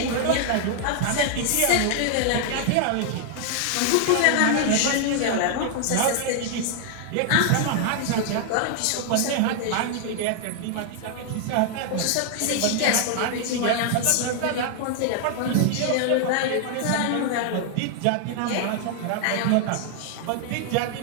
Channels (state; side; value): different; both; correlation 0.00